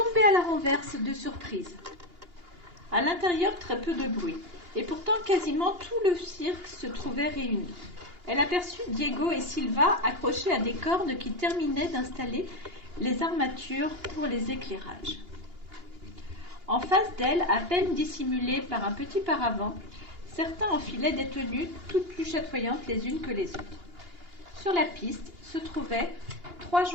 à la renverse de surprise. À l'intérieur, très peu de bruit, et pourtant quasiment tout le cirque se trouvait réuni. Elle aperçut Diego et Silva accrochés à des cordes qui terminaient d'installer les armatures pour les éclairages. En face d'elle, à peine dissimulée par un petit paravent, certains enfilaient des tenues toutes plus chatoyantes les unes que les autres. Sur la piste se trouvaient 3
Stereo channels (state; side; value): late; left; 2.8 ms